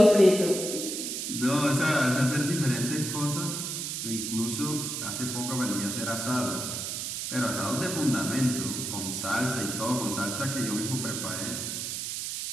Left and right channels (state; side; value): noise; right; hiss, 4 dB below the sound